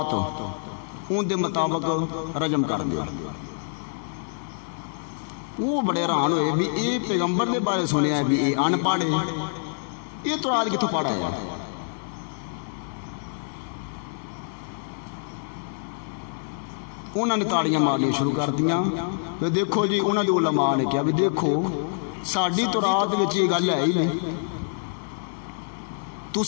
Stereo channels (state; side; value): silent; right; digital silence